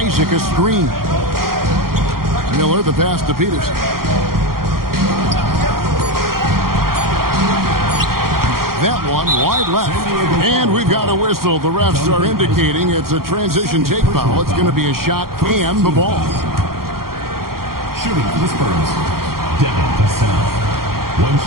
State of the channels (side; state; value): left; late; 0.93 ms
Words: a screen. Miller the pass to Peterson. That one wide left. And we've got a whistle. The refs are indicating it's a transition take foul. It's going to be a shot and the ball. Shooting for the Spurs, Devin Vassell. 1